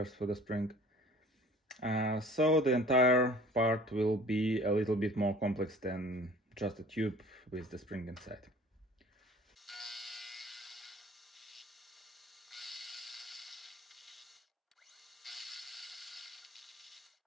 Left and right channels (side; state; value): both; normal; correlation 0.47